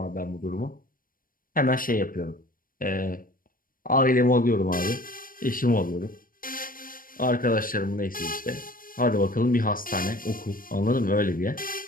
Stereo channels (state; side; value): late; right; 0.41 ms